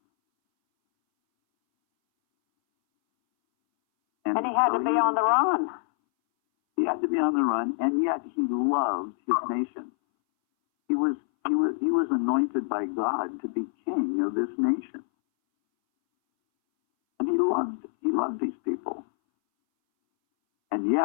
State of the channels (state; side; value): silent; right; 61 dB below the other